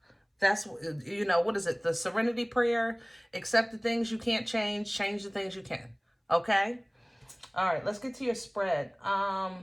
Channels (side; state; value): both; identical; correlation 1.00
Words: That's, you know, what is it? The serenity prayer. Accept the things you can't change. Change the things you can. Okay? All right, let's get to your spread.